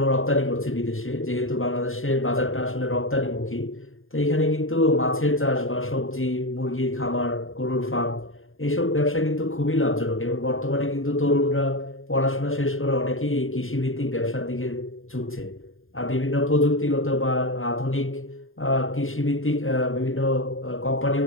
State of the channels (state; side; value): late; right; 0.59 ms